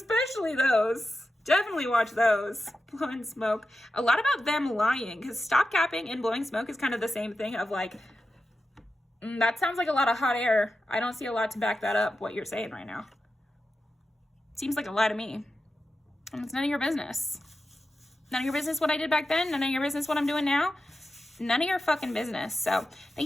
those. Definitely watch those. Blowing smoke. A lot about them lying. Because stop capping and blowing smoke is kind of the same thing of like, that sounds like a lot of hot air. I don't see a lot to back that up, what you're saying right now. Seems like a lie to me. And it's none of your business. None of your business what I did back then. None of your business what I'm doing now. None of your fucking business. So thank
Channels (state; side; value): normal; both; correlation 0.91